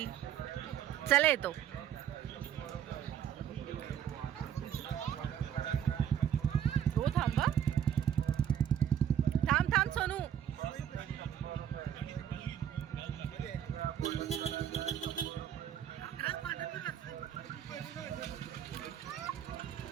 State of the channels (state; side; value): quieter; left; 9.5 dB